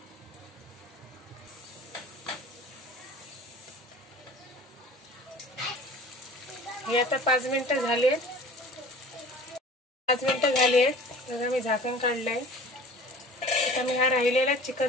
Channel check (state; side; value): normal; both; correlation 0.44